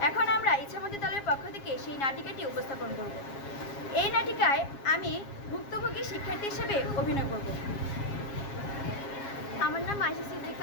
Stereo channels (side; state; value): right; late; 7.3 ms